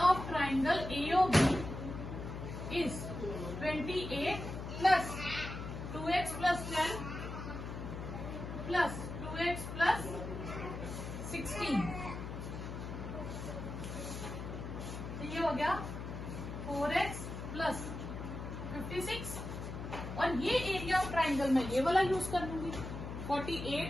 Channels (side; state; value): left; noise; hum, 7 dB below the sound